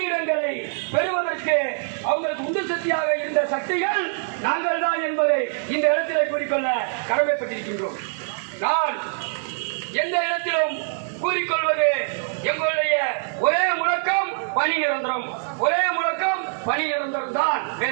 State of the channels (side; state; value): left; silent; 63 dB below the other